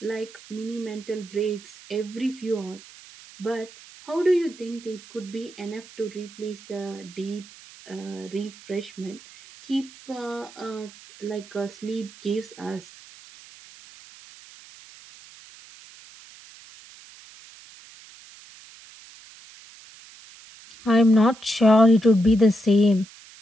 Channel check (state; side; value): noise; right; hiss, 21 dB below the sound